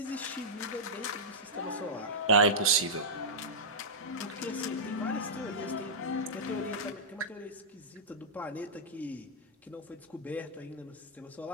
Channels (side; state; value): both; normal; correlation -0.12